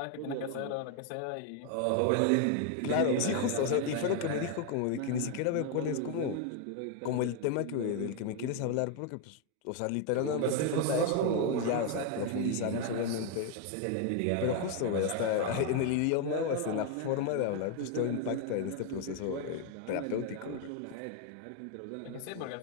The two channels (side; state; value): both; different; correlation 0.01